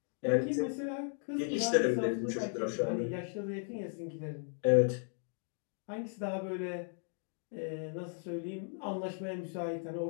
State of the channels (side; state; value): right; silent; 54 dB below the other